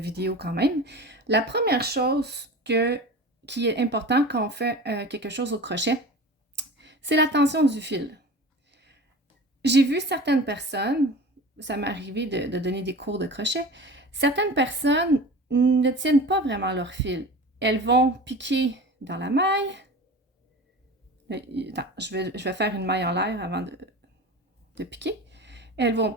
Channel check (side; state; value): both; normal; correlation 0.35